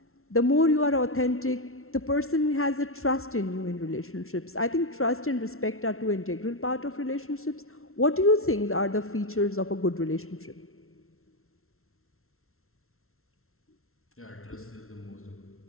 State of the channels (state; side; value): late; right; 0.62 ms